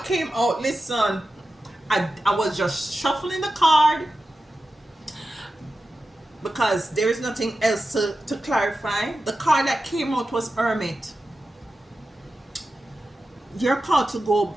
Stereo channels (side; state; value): both; normal; correlation 0.93